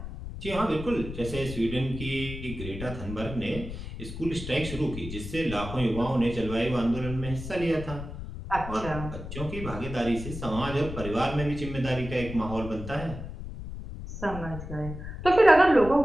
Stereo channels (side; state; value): left; noise; rumble, 9 dB below the sound